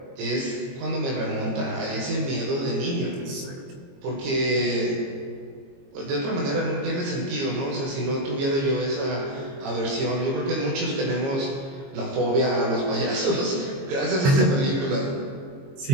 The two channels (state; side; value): late; left; 22 ms